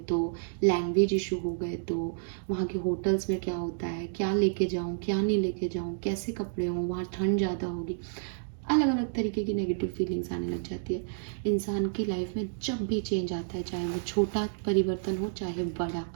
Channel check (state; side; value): silent; left; digital silence